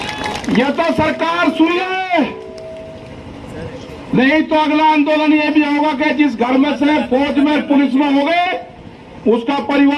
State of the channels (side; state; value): both; identical; correlation 1.00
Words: यह तो सरकार सुन ले, नहीं तो अगला आंदोलन यह भी होगा कि जिस घर में से फौज में पुलिस में हो गए, उसका